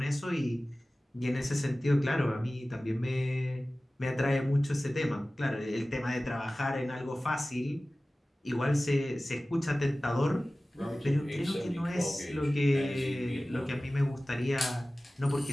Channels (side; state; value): both; normal; correlation 0.97